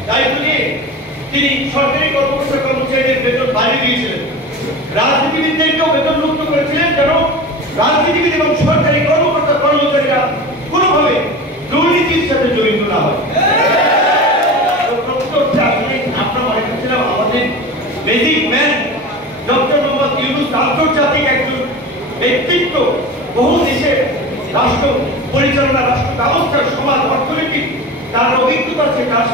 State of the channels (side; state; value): both; normal; correlation 0.32